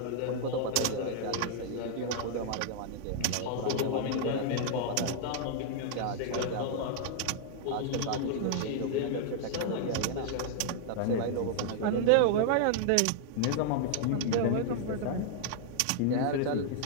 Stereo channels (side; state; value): both; different; correlation -0.01